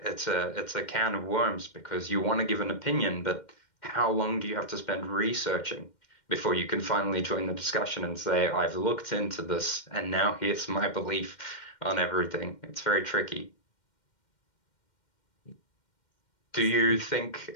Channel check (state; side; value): late; right; 2.1 ms